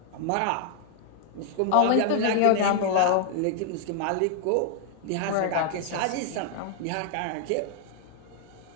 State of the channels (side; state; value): both; different; correlation 0.00